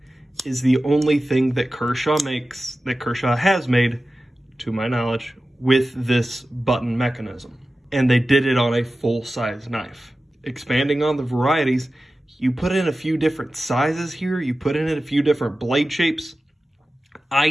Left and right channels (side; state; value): both; normal; correlation 0.94